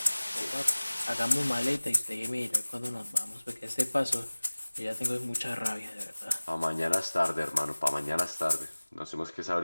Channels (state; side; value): inverted; both; correlation -1.00